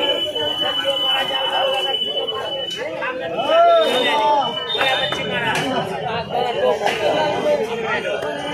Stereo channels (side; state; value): both; identical; correlation 1.00